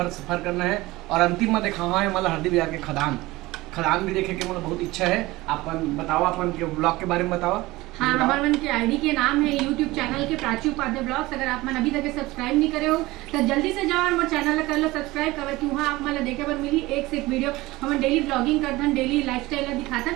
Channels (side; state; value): left; quieter; 19.7 dB